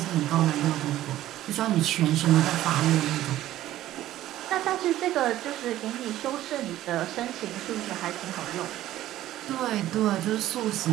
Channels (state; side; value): quieter; left; 14.0 dB